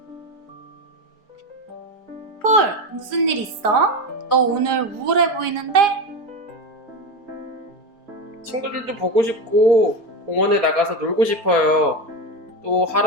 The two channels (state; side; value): late; left; 4.5 ms